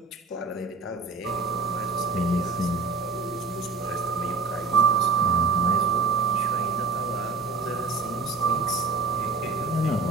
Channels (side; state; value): left; quieter; 4.2 dB